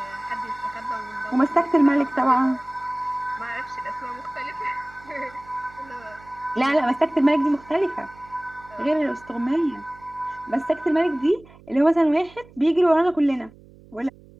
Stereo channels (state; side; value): noise; right; hum, 23 dB below the sound